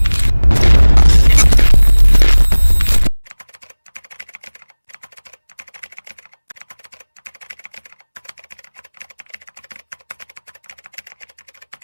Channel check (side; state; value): both; inverted; correlation -1.00